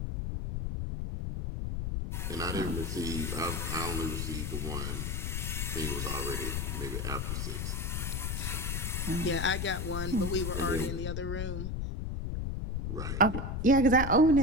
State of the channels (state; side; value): noise; left; rumble, 2 dB below the sound